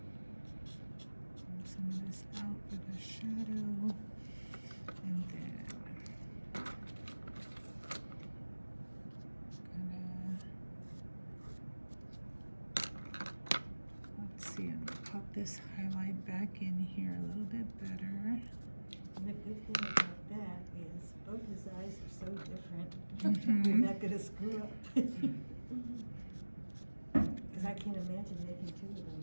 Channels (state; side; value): inverted; both; correlation -1.00